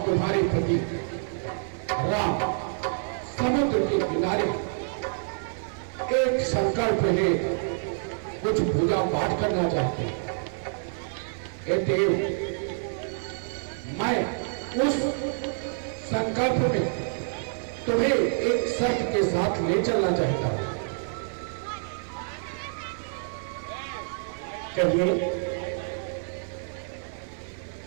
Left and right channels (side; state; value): left; silent; 57 dB below the other